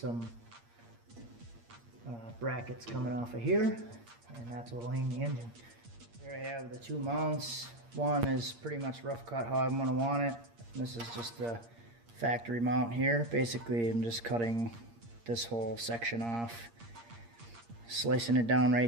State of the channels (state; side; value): late; left; 8.6 ms